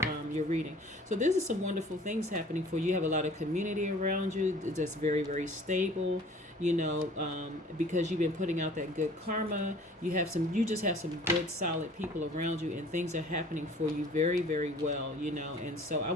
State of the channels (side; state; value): both; normal; correlation 0.50